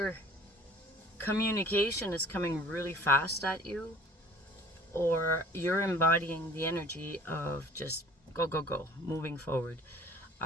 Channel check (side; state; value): both; normal; correlation 0.50